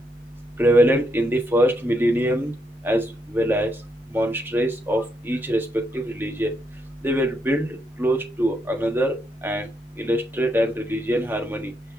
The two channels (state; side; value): normal; both; correlation 0.78